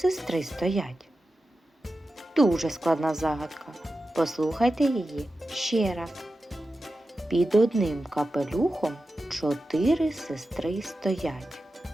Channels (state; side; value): normal; both; correlation 0.92